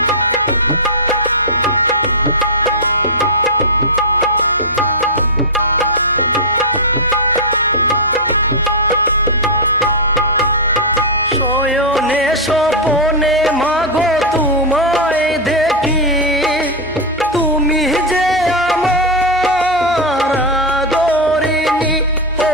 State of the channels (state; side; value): noise; right; hum, 20 dB below the sound